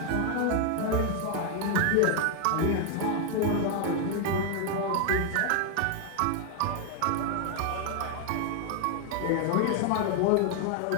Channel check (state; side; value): different; both; correlation 0.00